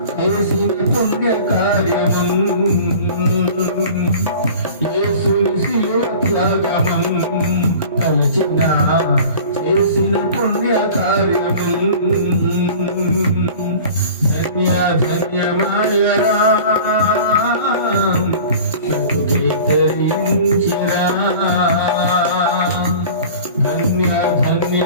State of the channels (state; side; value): inverted; both; correlation -0.42